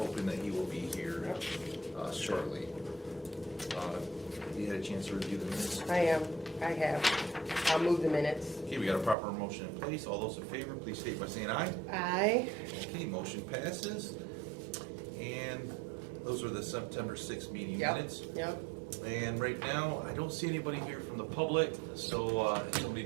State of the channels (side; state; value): left; drops out; at 9.2 s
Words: that he will be here shortly. You had a chance to review the minutes? I have. I'll move the minutes. Okay, we got a proper motion in place. All those in favor, please state by saying aye. Aye. Okay, motion passes. And those are the September 6th meeting minutes. Yep. And right now, I don't see anybody here from the public, so if somebody